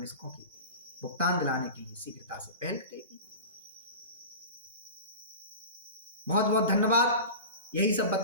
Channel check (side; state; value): both; inverted; correlation -0.32